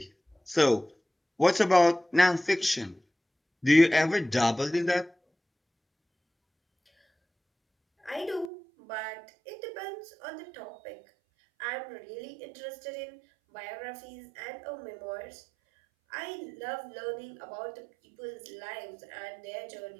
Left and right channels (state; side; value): drops out; left; at 8.5 s